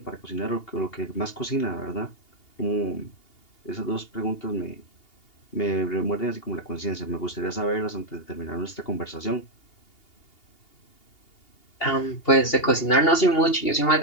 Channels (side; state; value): right; late; 2.8 ms